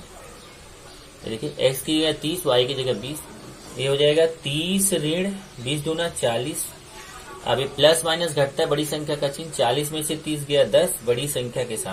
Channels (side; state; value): both; identical; correlation 1.00